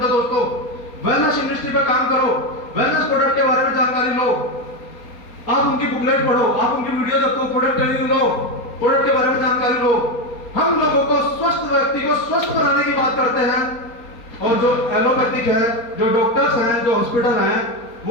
दोस्तों। वेलनेस इंडस्ट्री पे काम करो, वेलनेस प्रोडक्ट के बारे में जानकारी लो, आप उनकी बुकलेट पढ़ो, आप उनकी वीडियो देखो, प्रोडक्ट ट्रेनिंग लो, प्रोडक्ट के बारे में जानकारी लो। हम लोगों को स्वस्थ व्यक्ति को स्वस्थ बनाने की बात करते हैं, और जो एलोपैथिक है, जो डॉक्टर्स हैं, जो हॉस्पिटल हैं,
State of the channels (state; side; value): late; right; 4.3 ms